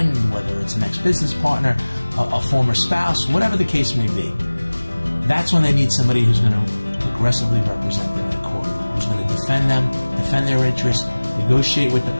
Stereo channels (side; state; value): both; inverted; correlation -1.00